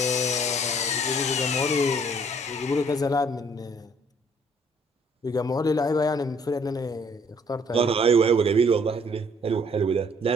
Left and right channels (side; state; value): both; normal; correlation 0.61